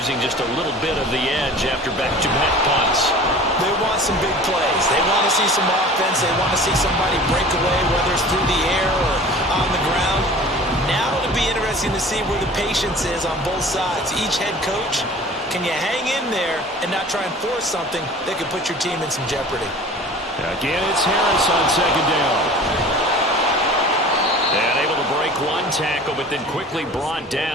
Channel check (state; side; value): normal; both; correlation 0.42